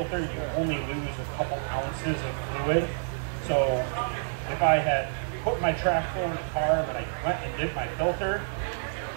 you only lose a couple ounces of fluid. So if I had put my track full in the car and I went and did my filter,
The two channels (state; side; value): silent; left; digital silence